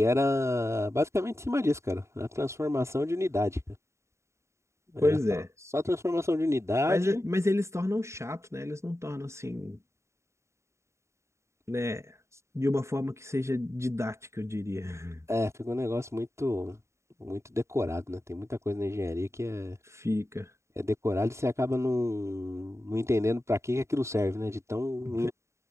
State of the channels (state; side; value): late; left; 0.14 ms